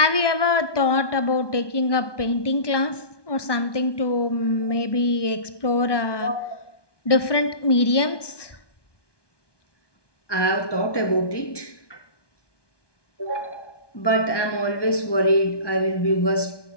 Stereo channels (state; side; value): late; right; 1.2 ms